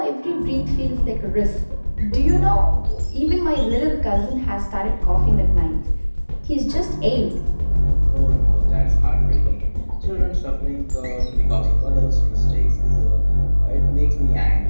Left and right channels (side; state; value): both; inverted; correlation -1.00